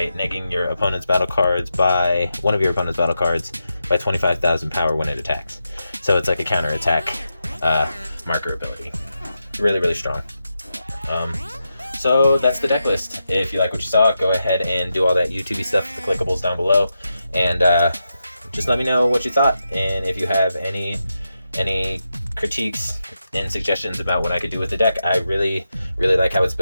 negging your opponent's battle cards by one of your opponent's battle cards by 25,000 power when it attacks. So it's like a counter attack marker ability. Really, really strong. So that's the deck list. If you like what you saw, go ahead and do all that YouTube stuff with the clickables down below, and just let me know what you thought, and if you have any critiques and suggestions about what I could do with the deck. I really, really like how it's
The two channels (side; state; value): both; inverted; correlation -0.88